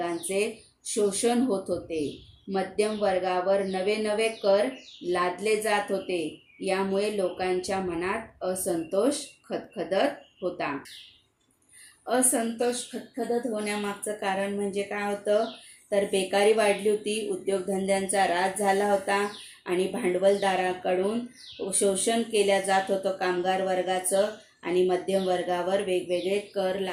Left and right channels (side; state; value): both; identical; correlation 1.00